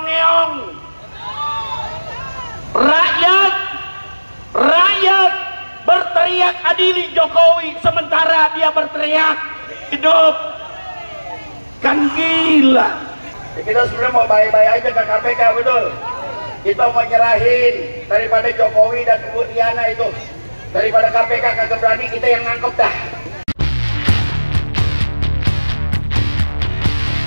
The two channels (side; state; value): both; inverted; correlation -1.00